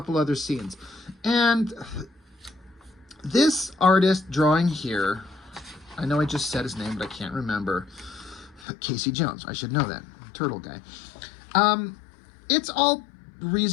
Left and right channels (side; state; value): right; drops out; at 8.7 s